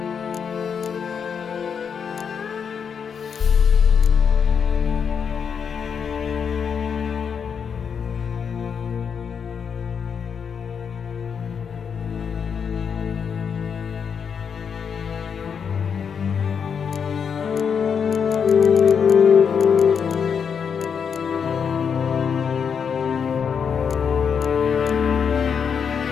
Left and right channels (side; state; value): right; quieter; 6.8 dB